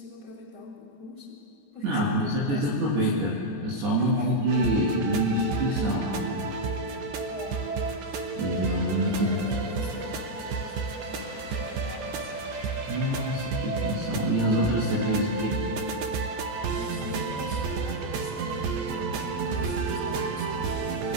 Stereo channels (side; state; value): left; late; 14 ms